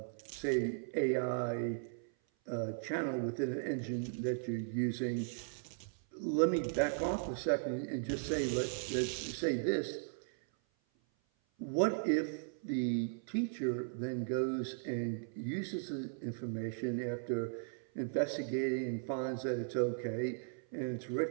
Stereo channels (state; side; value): silent; left; 53 dB below the other